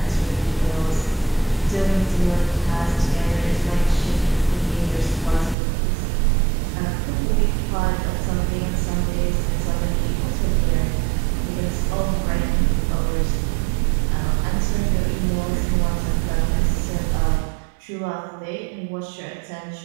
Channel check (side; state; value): left; drops out; at 5.6 s